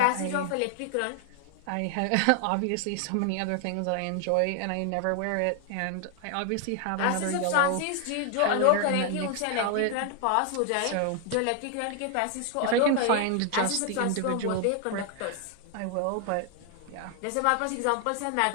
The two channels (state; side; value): different; both; correlation 0.00